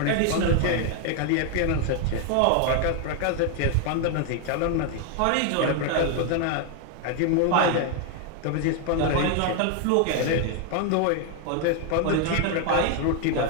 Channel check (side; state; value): both; different; correlation 0.01